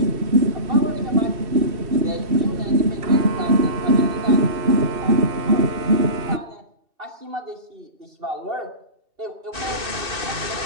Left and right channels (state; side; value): late; left; 2.7 ms